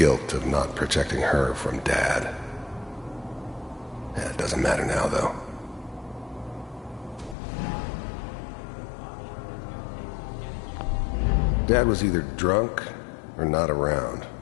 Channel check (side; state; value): right; drops out; at 7.4 s